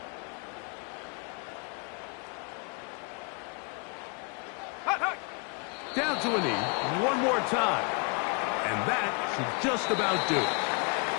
Hut, hut. Down to a knee. One more time. And that should just about do it.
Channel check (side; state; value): right; quieter; 34.1 dB